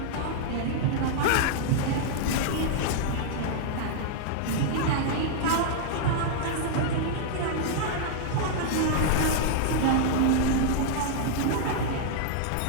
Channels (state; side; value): different; both; correlation -0.01